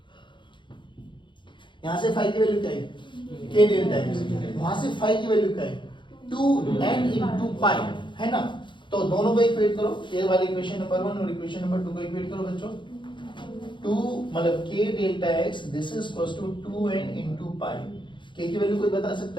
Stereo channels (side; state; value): right; late; 0.23 ms